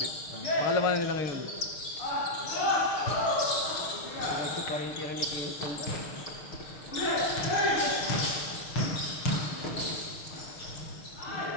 Makalaman na nila ngayon. Ito pa rin tira ni Kenneth.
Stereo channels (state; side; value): late; right; 6.6 ms